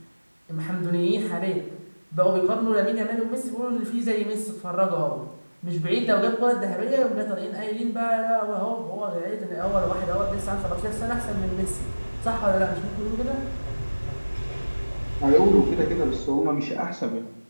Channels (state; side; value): inverted; both; correlation -1.00